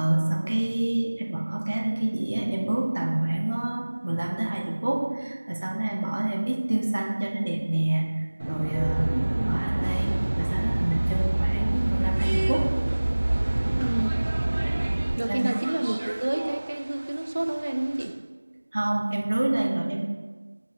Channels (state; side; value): inverted; both; correlation -1.00